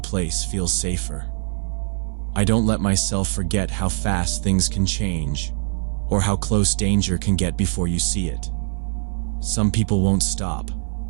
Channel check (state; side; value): silent; left; 64 dB below the other